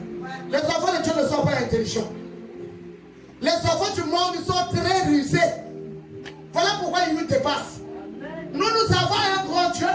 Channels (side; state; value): both; identical; correlation 1.00